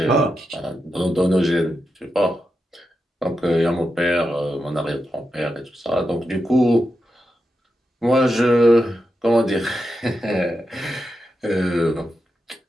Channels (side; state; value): both; normal; correlation 0.88